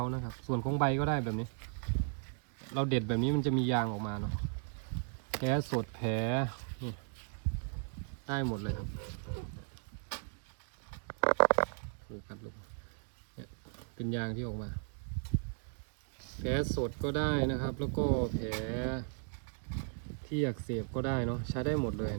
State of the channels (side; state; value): left; silent; 54 dB below the other